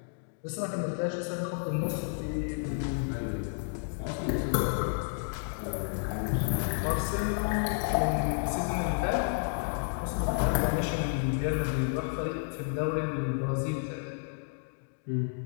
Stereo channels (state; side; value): silent; right; digital silence